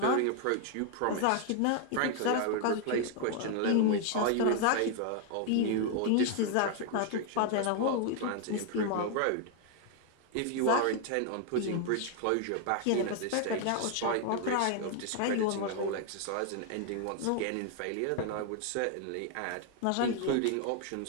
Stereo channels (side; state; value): both; different; correlation 0.00